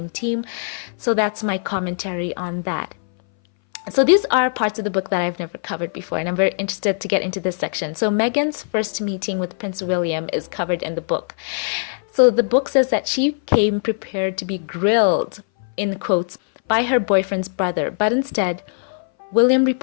team. So that's my commentary on that. So these are parts of the book that I've never covered before, and I'm very interested to get into this section. So Meghan's first meeting with Prince William is covered in the book. So the book says that she came prepared to be grilled, in quotes, by her boyfriend's brother, but instead, William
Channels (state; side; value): silent; right; 61 dB below the other